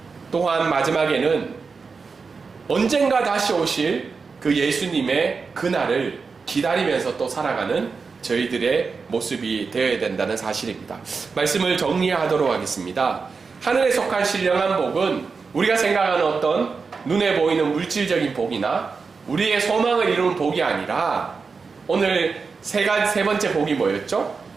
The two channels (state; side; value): quieter; left; 4.9 dB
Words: 또한 마지막에는 언젠가 다시 오실 그 예수님의 그날을 기다리면서 또 살아가는 저희들의 모습이 되어야 된다는 사실입니다. 말씀을 정리하도록 하겠습니다. 하늘에 속한 신령한 복은 우리가 생각하는 어떤 눈에 보이는 물질적인 복이나 우리의 소망을 이루는 복이 아니라 오늘 세 번째 복이 뭐였죠?